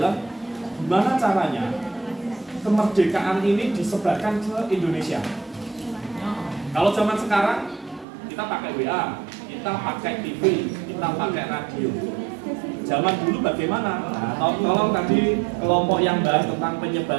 gimana caranya kemerdekaan ini disebarkan ke Indonesia. Kalau zaman sekarang kita pakai WA, kita pakai TV, kita pakai radio. Zaman dulu bagaimana? Nah, tolong tadi kelompok yang bahas tentang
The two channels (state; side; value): drops out; left; at 8.1 s